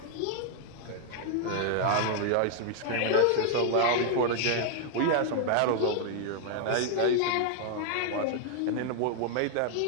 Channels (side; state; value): both; different; correlation 0.00